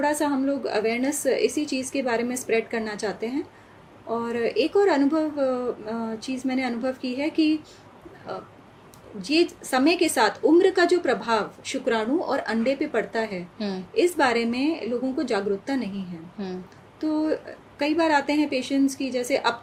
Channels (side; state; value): both; identical; correlation 1.00